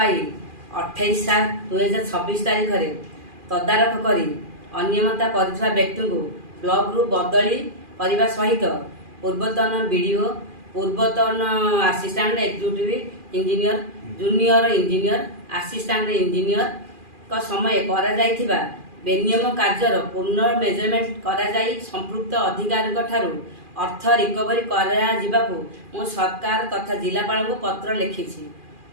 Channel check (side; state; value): left; late; 2.4 ms